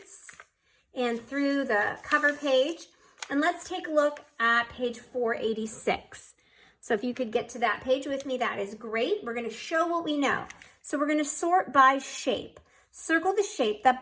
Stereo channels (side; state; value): both; identical; correlation 1.00